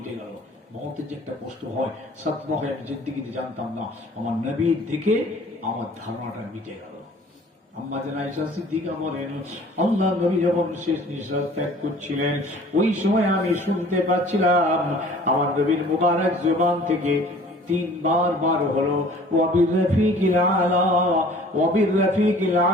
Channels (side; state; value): both; normal; correlation 0.50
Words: গেল। মওতের যে একটা কষ্ট হয়, সাদমা হয়, আমি জিন্দেগিতে জানতাম না। আমার নবীর দেখে আমার ধারণাটা মিটে গেল। আম্মা জান আয়েশা সিদ্দিকা বলেন, আল্লাহ নবী যখন শেষ নিঃশ্বাস ত্যাগ করছিলেন, ওই সময় আমি শুনতে পাচ্ছিলাম আমার নবীর মুবারক জবান থেকে 3 বার হলো, ওয়াবির রফিকিল আলা, ওয়াবির রফিকিল